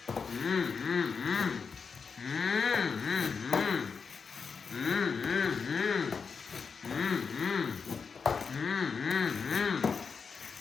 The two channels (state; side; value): quieter; right; 5.6 dB